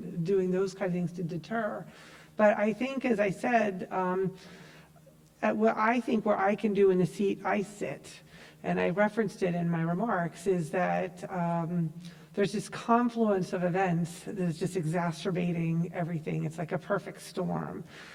doing those kind of things to deter. But I think, as I said, what I can do in the seat I sit, and I referenced it in my remarks, is that there's this confluence of events that is just exacerbating everything. It's like a perfect storm.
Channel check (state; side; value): identical; both; correlation 1.00